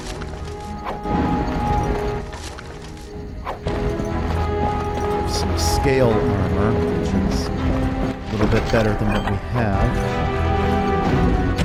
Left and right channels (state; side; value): identical; both; correlation 1.00